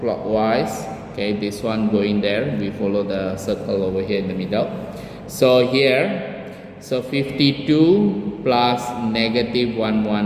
Okay, this one going there, we follow the circle over here in the middle. So here, so 52 plus negative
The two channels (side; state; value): both; identical; correlation 1.00